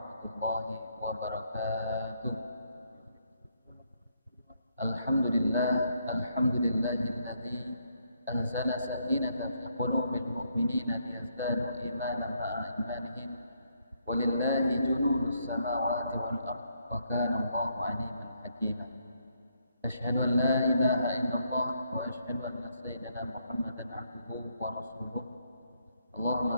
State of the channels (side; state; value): both; inverted; correlation -0.74